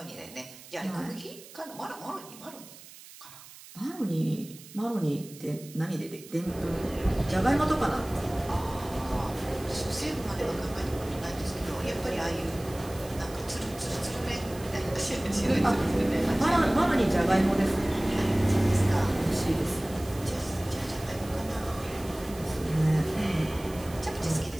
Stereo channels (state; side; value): noise; right; hiss, 18 dB below the sound